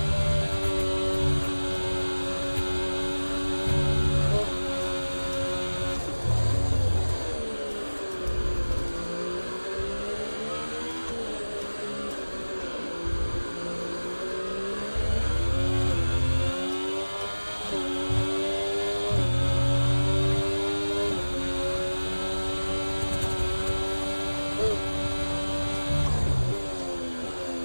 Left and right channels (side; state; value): both; inverted; correlation -1.00